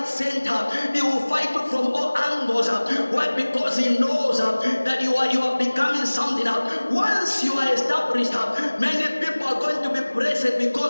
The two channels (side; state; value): both; inverted; correlation -1.00